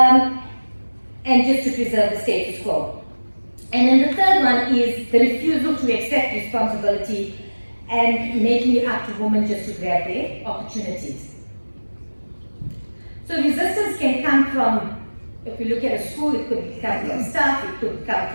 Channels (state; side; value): inverted; both; correlation -1.00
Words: just to preserve the status quo. And then the third one is the refusal to accept responsibility and making it up to women just to grab their opportunities. So resistance can come from, if we look at a school, it could come from staff, it could come